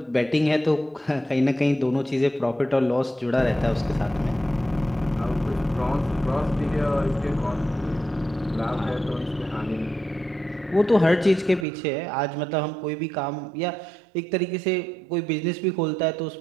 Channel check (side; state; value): left; drops out; at 11.7 s